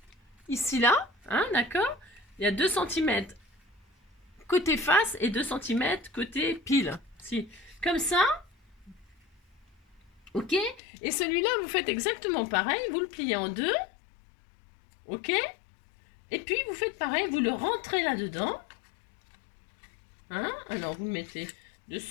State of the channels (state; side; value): drops out; right; at 10.8 s